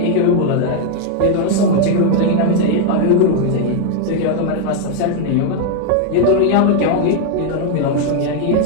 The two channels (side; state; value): both; different; correlation 0.00